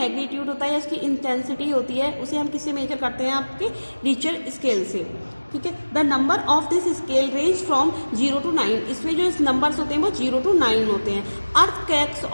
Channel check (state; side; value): inverted; both; correlation -1.00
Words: होता है, इसकी इंटेंसिटी होती है, उसे हम किससे मेजर करते हैं? आपके रिक्टर स्केल से। ठीक है, the number of this scale range from 0 to 9। इसमें जो नंबर्स होते हैं वो 0 to 9 होते हैं। Earthquakes